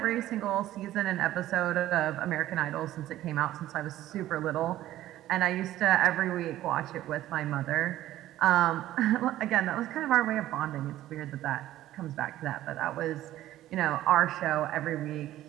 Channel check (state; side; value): quieter; left; 14.1 dB